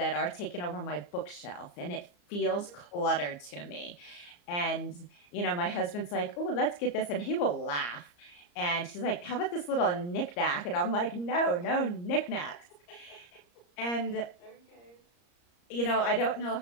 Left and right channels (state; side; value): late; right; 34 ms